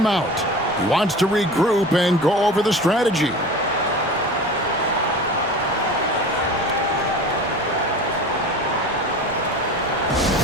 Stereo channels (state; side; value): normal; both; correlation 0.36